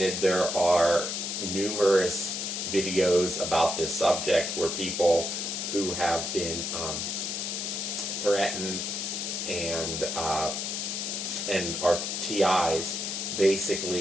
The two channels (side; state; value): left; noise; hiss, 3 dB below the sound